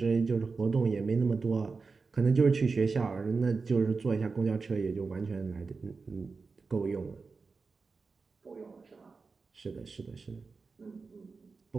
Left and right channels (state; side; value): quieter; left; 4.5 dB